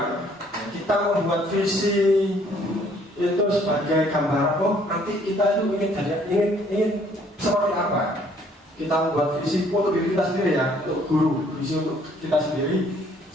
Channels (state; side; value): normal; both; correlation 0.62